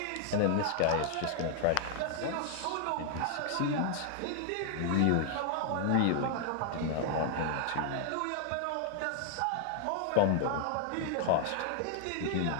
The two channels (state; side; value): different; both; correlation 0.00